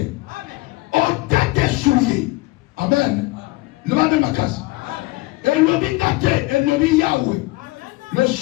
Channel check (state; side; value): quieter; right; 21.2 dB